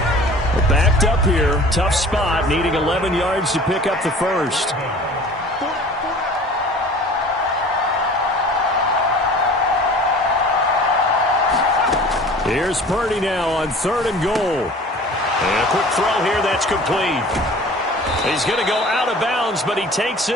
Well, backed up here. Tough spot. Needing 11 yards to pick up the first. Here's Purdy now on 3rd and goal. And a quick throw here. That's complete. He's going to go out of bounds, but he takes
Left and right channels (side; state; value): both; normal; correlation 0.44